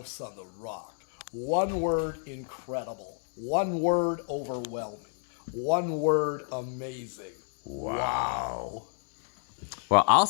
on the Rock. One word, incredible. One word, overwhelming. One word, amazing. Wow. Well, I'll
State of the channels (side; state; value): right; silent; digital silence